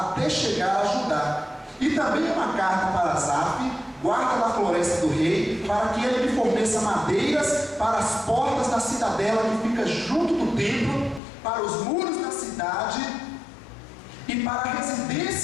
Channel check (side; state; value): right; drops out; at 11.2 s